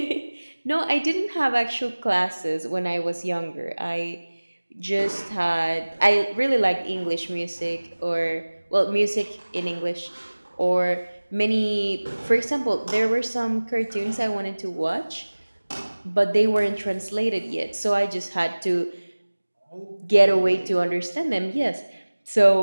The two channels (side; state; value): both; inverted; correlation -1.00